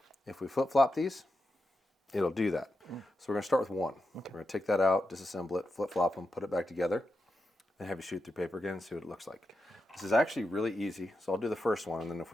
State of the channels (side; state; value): both; normal; correlation 0.88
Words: if we flip-flop these, it'll do that. So we're going to start with one. Okay. We're going to take that out, disassemble it, flip-flop them, put it back together, then have you shoot through paper again and see what it looks like. This is actually really easy, so I'll do the first one, and then if